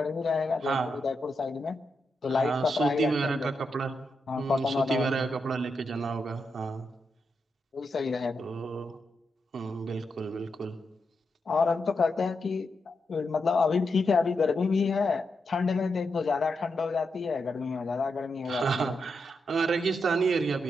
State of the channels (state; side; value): normal; both; correlation 0.85